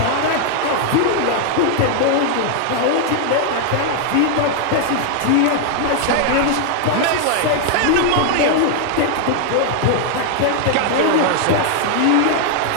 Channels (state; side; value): different; both; correlation 0.00